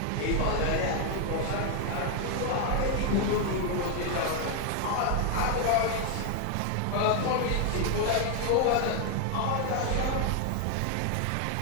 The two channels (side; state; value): both; different; correlation 0.00